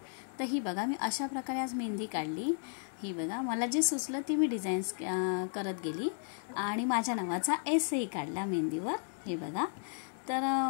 तर ही बघा, मी अशा प्रकारे आज मेहंदी काढली. ही बघा, मला जे सुचलं ती मी डिझाईन्स करत गेली आणि माझ्या नावाचा एसही काढला मेहंदीवर. हे बघा. तर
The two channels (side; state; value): right; silent; 55 dB below the other